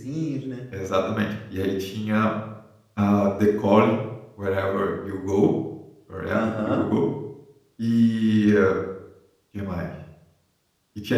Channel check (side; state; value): both; identical; correlation 1.00